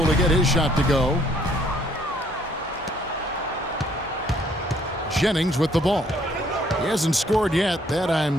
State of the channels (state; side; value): normal; both; correlation 0.64